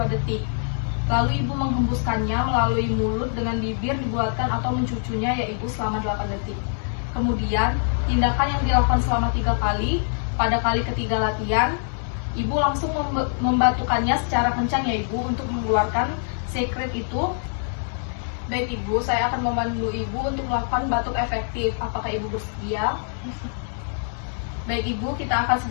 detik. Lalu Ibu menghembuskannya melalui mulut dengan bibir dibuatkan atau mencucunya ya Ibu selama 8 detik. Kemudian, tindakan yang dilakukan selama 3 kali, pada kali ketiga latihan, Ibu langsung membatukannya secara kencang ya Ibu untuk mengeluarkan sekret itu. Baik Ibu, saya akan membantu Ibu untuk melakukan batuk efektif. Apakah Ibu bersedia? Baik Ibu, kita akan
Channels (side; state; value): right; silent; digital silence